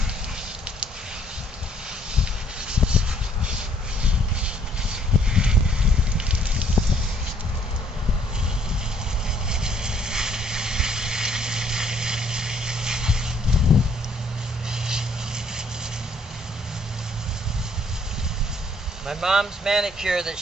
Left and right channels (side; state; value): both; normal; correlation 0.64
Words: My mom's manicure that